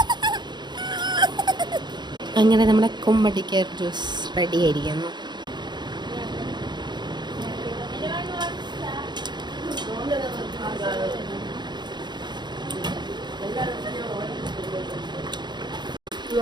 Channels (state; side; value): late; left; 0.21 ms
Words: അങ്ങനെ നമ്മുടെ കുമ്മട്ടിക്ക ജ്യൂസ് റെഡി ആയിരിക്കുന്നു.